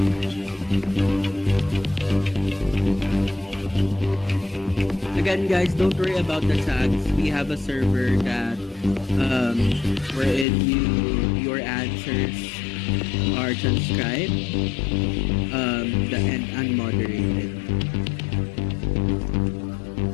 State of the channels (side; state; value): right; drops out; at 10.5 s